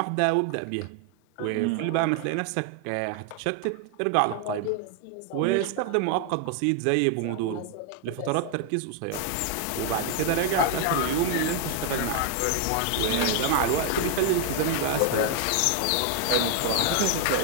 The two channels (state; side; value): different; both; correlation 0.00